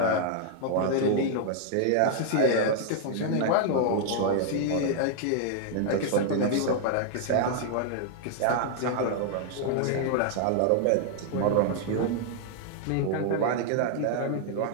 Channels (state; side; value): different; both; correlation 0.00